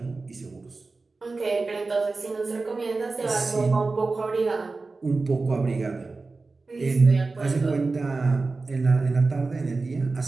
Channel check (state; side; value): quieter; left; 3.8 dB